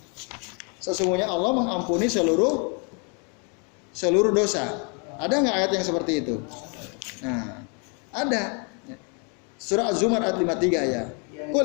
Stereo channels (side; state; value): right; quieter; 36.6 dB